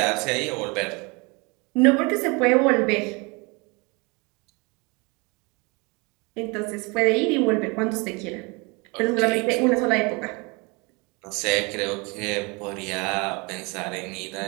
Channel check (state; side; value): quieter; left; 28.6 dB